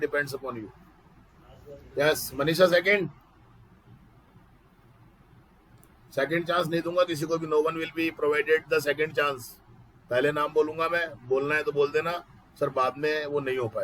upon you. Yes, Manisha second chance नहीं दूंगा किसी को भी. No one will be provided the second chance. पहले नाम बोलूंगा मैं, बोलना है तो बोल देना सर, बाद में वो नहीं हो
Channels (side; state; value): both; identical; correlation 1.00